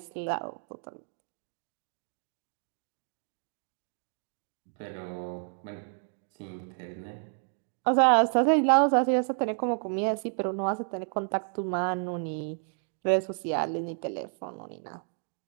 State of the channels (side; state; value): left; silent; 57 dB below the other